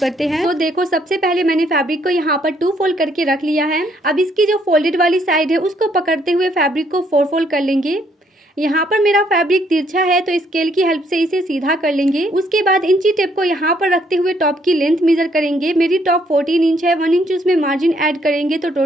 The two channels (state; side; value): normal; both; correlation 0.69